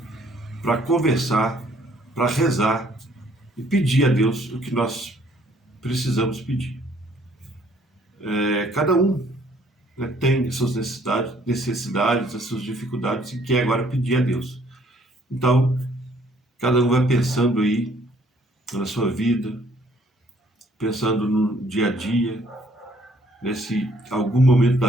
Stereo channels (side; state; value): both; normal; correlation 0.63